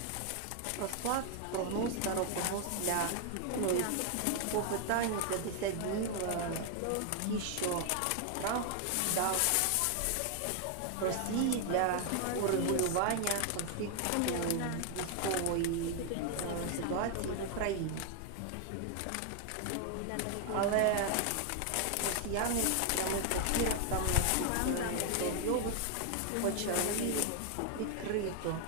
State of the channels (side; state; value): both; different; correlation 0.00